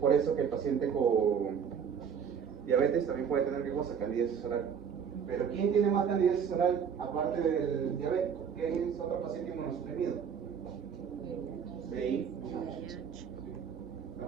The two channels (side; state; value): left; quieter; 7.3 dB